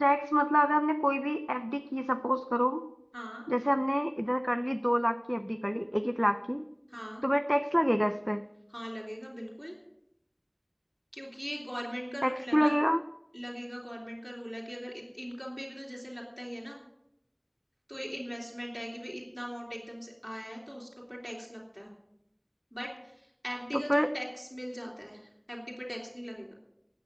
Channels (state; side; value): identical; both; correlation 1.00